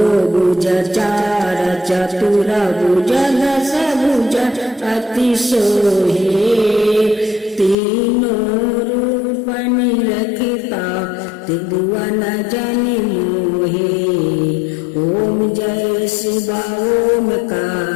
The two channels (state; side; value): drops out; right; at 7.8 s